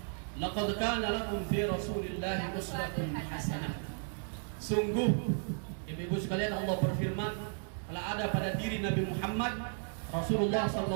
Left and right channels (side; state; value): left; silent; 55 dB below the other